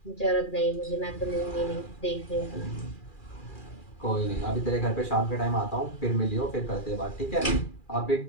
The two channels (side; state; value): right; late; 2.4 ms